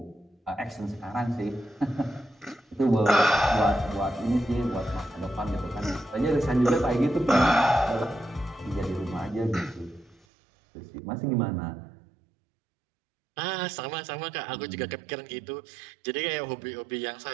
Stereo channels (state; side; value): drops out; left; at 10.2 s